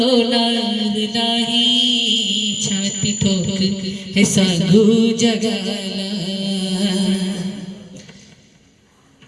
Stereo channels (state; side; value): identical; both; correlation 1.00